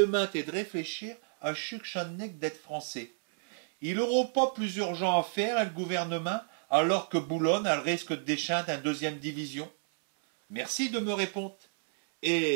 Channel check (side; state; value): left; silent; 57 dB below the other